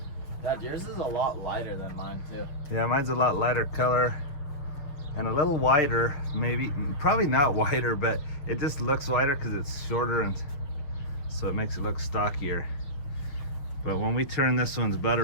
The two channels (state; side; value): late; right; 6.8 ms